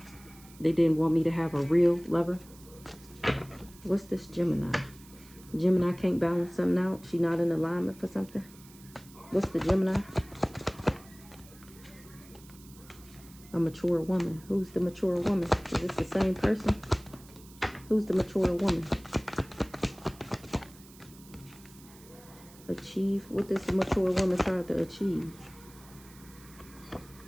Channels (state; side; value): noise; right; hiss, 22 dB below the sound